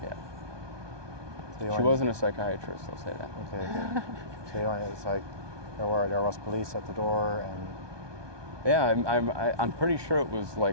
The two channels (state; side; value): late; left; 1.2 ms